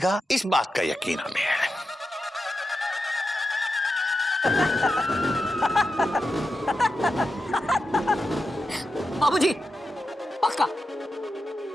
इस बात का यकीन हमें है। बाबूजी पक्का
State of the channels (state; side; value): normal; both; correlation 0.89